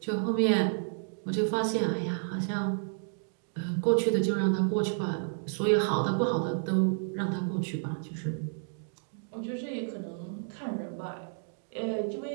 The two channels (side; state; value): left; silent; digital silence